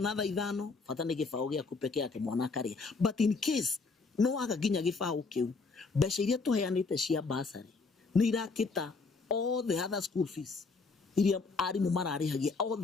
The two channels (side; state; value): right; quieter; 4.2 dB